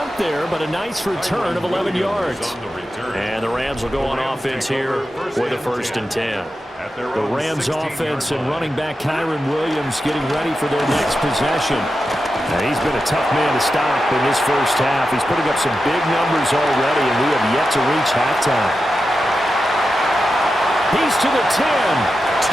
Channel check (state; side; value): normal; both; correlation 0.90